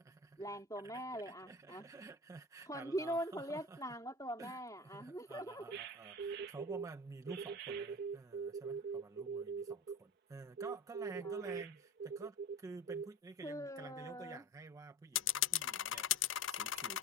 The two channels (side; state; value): both; normal; correlation 0.31